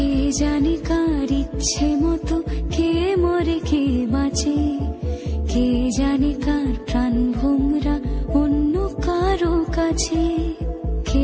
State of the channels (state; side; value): identical; both; correlation 1.00